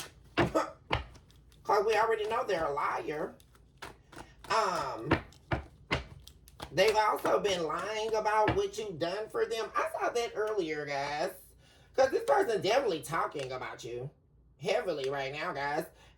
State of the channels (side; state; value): both; identical; correlation 1.00